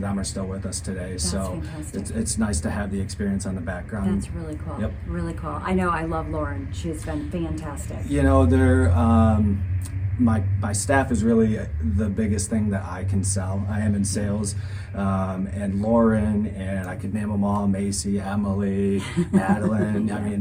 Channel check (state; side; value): identical; both; correlation 1.00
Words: are still with us today. That's so it's nice to have the experience on the background. That's really cool. Yep. Really cool. I know I love Lauren. She's been fantastic. They're my staff is really the biggest thing that I can sell. I am in sales, and Lauren, and I could name them all, Macy, Emily, Madeline, I